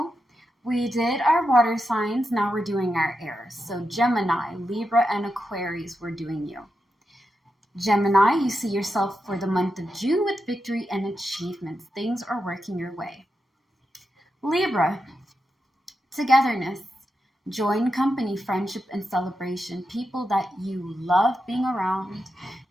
we did our water signs, now we're doing our airs. So Gemini, Libra, and Aquarius, we're doing you. Gemini, you see yourself for the month of June with victory and achievements. Things are working your way. Libra, togetherness, joy in company, friendship, and celebration. People that you love being around,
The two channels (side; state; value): both; normal; correlation 0.87